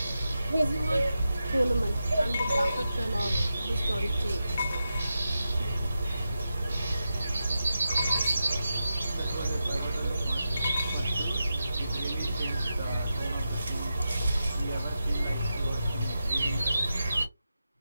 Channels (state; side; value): inverted; both; correlation -0.89